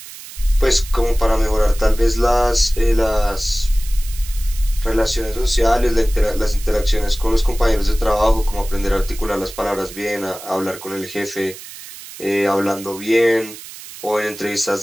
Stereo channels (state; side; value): noise; right; hiss, 15 dB below the sound